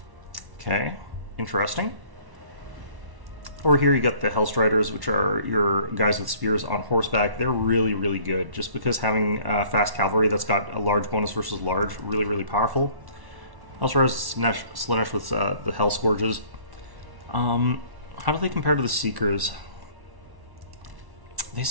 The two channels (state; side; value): late; left; 1.1 ms